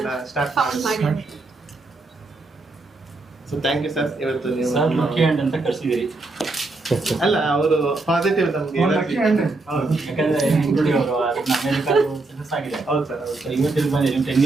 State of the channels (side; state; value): left; quieter; 3.3 dB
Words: ಫೌಂಡ್ ಮಾಡಿದ್ರು. So thank you sir. ಇವತ್ತು ನೀವು ಸರ್ ಲಕ್ಕಿ ಹ್ಯಾಂಡ್ ಅಂತ ಕರ್ಸಿದಿರಿ. ಅಲ್ಲ, ಅವರು ಪಾಸಿಟಿವ್ ನಮ್ಗೆ ಯಾಕಂದ್ರೆ ಇಂಕ್ಲೂಡಿ ಅವರು ಅಮೆರಿಕಾದ ಸಕ್ಸಸ್ ಆಗಿದೆ. ಹೌದು ಸರ್, ಹೌದು ಸರ್. ಇವತ್ತಿಗೆ ಬಂದಿರಿ 10